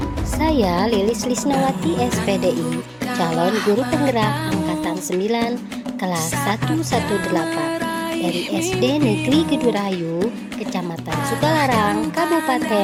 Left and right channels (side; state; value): both; identical; correlation 1.00